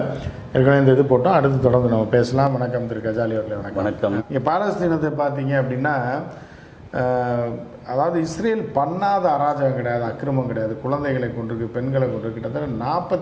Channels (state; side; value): identical; both; correlation 1.00